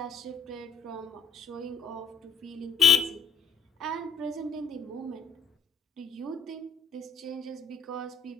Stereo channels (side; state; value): right; quieter; 4.8 dB